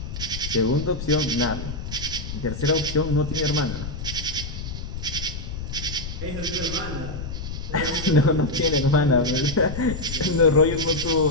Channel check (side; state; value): left; noise; rumble, 7 dB below the sound